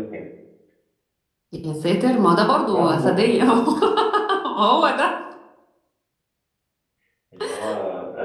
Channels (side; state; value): both; identical; correlation 1.00